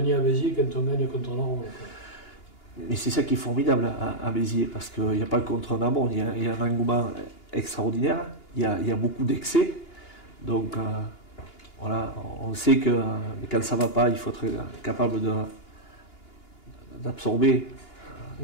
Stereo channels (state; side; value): late; right; 2.9 ms